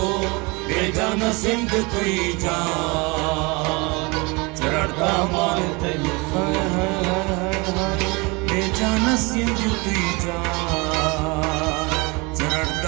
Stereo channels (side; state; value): left; quieter; 27.0 dB